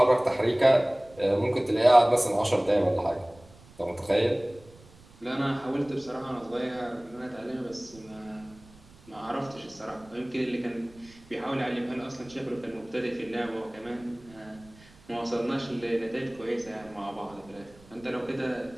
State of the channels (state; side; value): noise; right; rumble, 24 dB below the sound